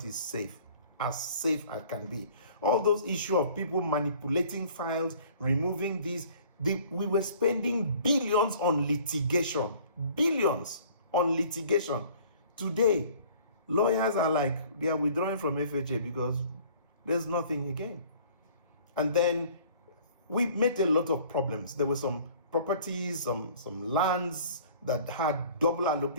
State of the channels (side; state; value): both; inverted; correlation -0.52